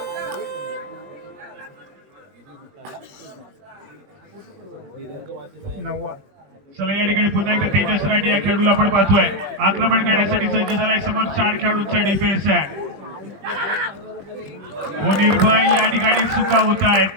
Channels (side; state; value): left; late; 21 ms